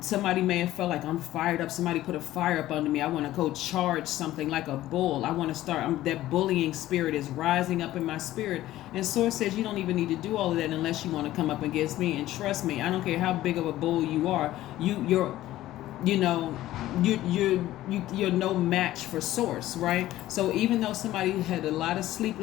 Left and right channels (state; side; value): quieter; right; 14.9 dB